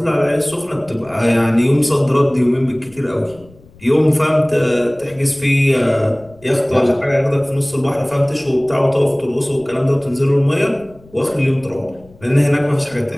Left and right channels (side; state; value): left; noise; rumble, 25 dB below the sound